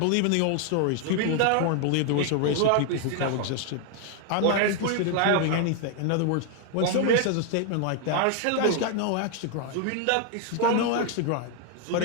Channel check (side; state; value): both; different; correlation 0.01